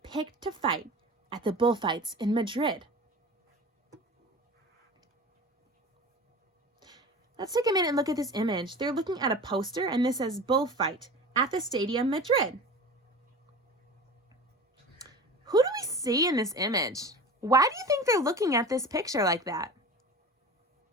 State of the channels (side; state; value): both; normal; correlation 0.35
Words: picked to fight at the bullfights in Madrid. Let's take a minute and look at this image. They're looking at a poster and this says bullfight at the Stadium Madrid. Who do we see in this image? Why do you think they're looking at this picture like that?